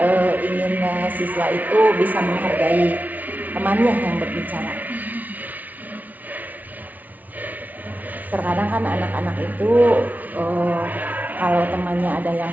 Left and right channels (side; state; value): left; late; 0.076 ms